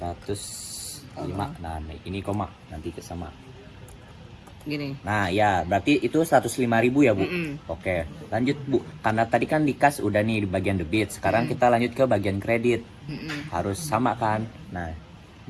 Nah, ini koma nanti ke sama. Gini. Nah, ya berarti itu 105.000 ya Bu. Oke, lanjut Bu. Karena tadi kan di kas udah nih di bagian debit. Sekarang kita lanjut ke bagian kredit. Harus sama kan? Nah,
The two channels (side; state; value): both; identical; correlation 1.00